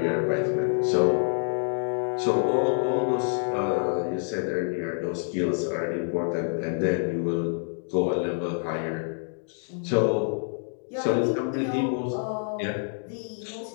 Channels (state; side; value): silent; right; 58 dB below the other